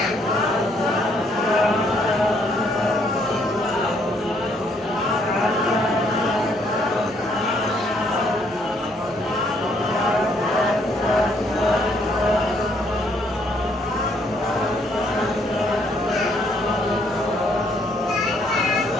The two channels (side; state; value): both; normal; correlation 0.68